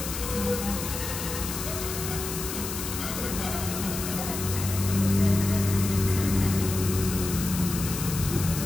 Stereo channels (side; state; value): left; noise; hiss, 6 dB below the sound